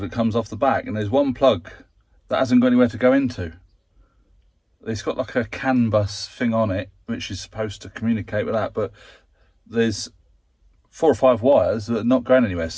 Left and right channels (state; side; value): identical; both; correlation 1.00